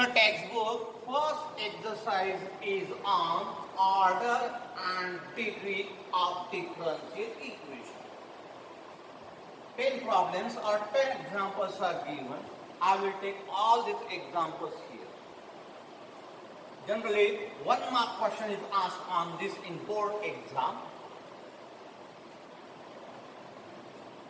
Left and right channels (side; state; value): both; identical; correlation 1.00